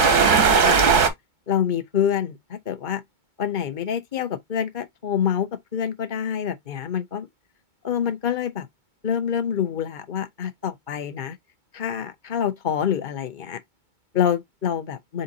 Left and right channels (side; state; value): left; late; 2.2 ms